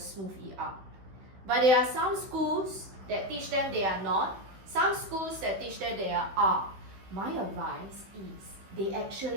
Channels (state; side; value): late; left; 16 ms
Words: ER. But there are some schools that teach them they are not. Some schools that teach them they are. My advice is they